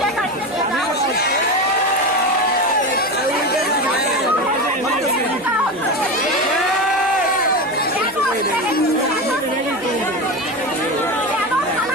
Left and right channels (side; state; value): right; noise; hum, 26 dB below the sound